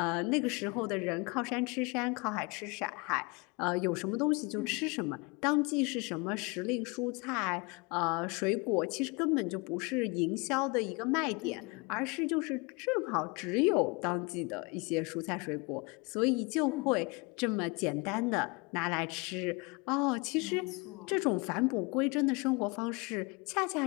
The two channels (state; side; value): quieter; right; 28.4 dB